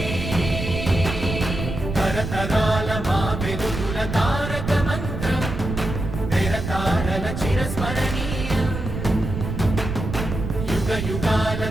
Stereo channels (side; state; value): right; noise; rumble, 5 dB below the sound